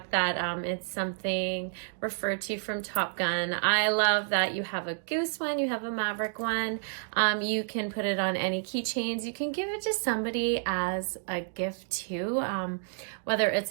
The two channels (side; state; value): left; silent; digital silence